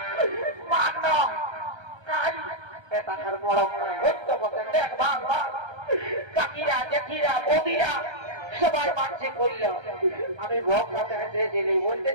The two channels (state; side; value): late; left; 1.3 ms